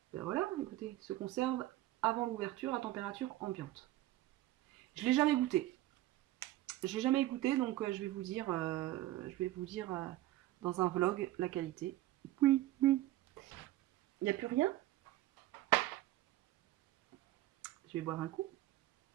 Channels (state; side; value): quieter; left; 15.6 dB